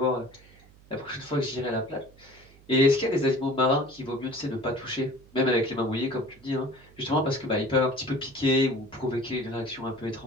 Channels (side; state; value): right; noise; hum, 25 dB below the sound